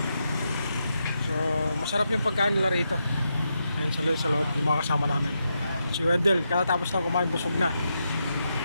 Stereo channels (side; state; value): both; inverted; correlation -0.84